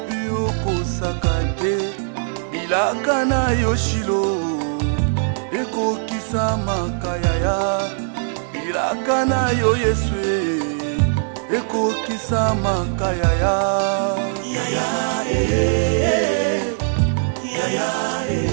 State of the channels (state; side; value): silent; left; 64 dB below the other